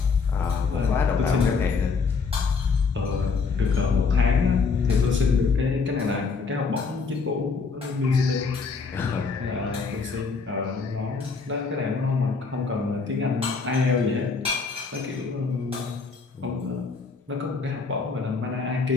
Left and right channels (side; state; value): right; quieter; 4.8 dB